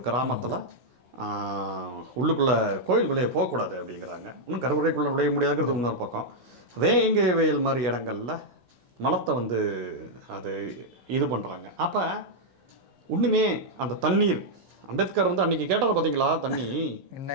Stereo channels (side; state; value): left; late; 16 ms